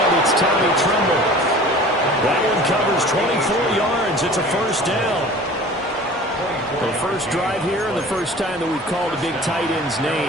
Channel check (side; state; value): both; normal; correlation 0.43